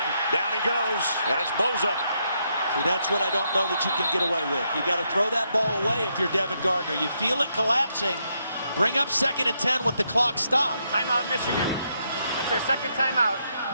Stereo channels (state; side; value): inverted; both; correlation -0.78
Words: Down he goes, and it's Bosa. See, that's what I don't know that you can get away with. You got to throw that ball away if you're Devin Gardner. You feel it collapsing. Bring up 2nd and 10 with the clock stopped. Timeout, Michigan. That's their 2nd timeout.